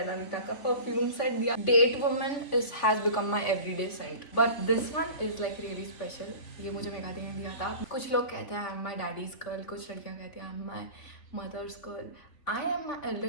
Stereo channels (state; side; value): late; right; 3.5 ms